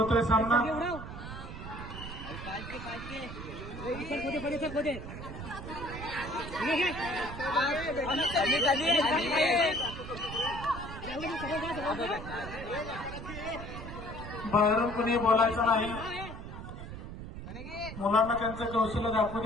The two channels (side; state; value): right; noise; rumble, 10 dB below the sound